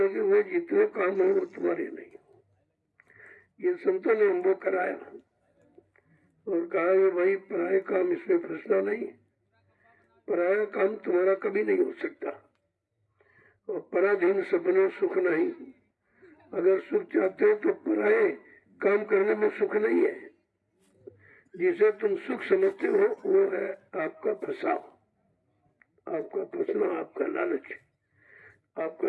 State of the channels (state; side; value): identical; both; correlation 1.00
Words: हुए जितने काम है वो तुम्हारे नहीं। ये संतों ने हमको कराया और कहा ये भाई पराया काम, इसमें फंसना नहीं, पराया काम तुम्हारा कभी नहीं हो सकता। और पराधीन सपने सुख नहीं, अगर सुख चाहते हो तो पराये काम करने में सुख नहीं है। जिसे तुम सुख समझते हो वो है आपका फंसाव, आपका फंसना, आपका लालच,